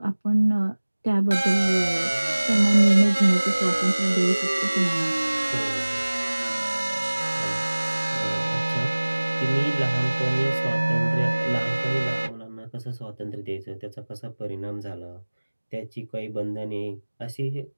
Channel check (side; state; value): both; inverted; correlation -1.00